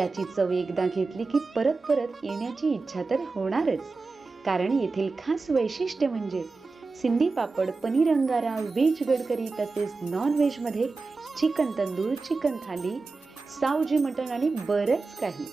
चव एकदा घेतली की परत परत येण्याची इच्छा तर होणारच। कारण येथील खास वैशिष्ट्य म्हणजे सिंधी पापड, पनीर अंगारा, व्हेज गडकरी तसेच नॉन व्हेज मध्ये चिकन तंदूर, चिकन थाली, सावजी मटण आणि बरंच काही।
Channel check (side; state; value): left; quieter; 3.9 dB